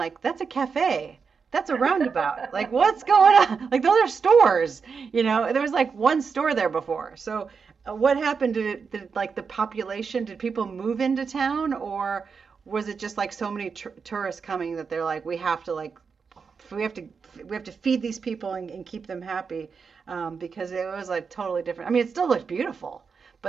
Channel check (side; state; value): left; quieter; 5.6 dB